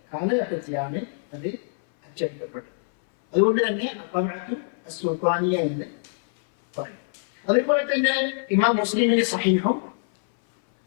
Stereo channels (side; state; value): right; silent; 60 dB below the other